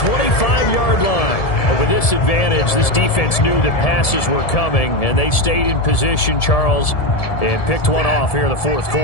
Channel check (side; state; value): right; late; 1.7 ms